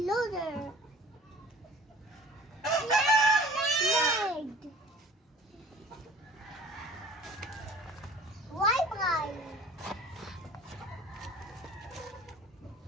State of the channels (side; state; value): both; normal; correlation 0.46